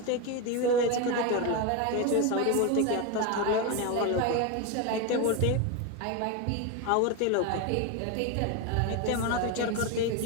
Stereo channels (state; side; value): different; both; correlation 0.03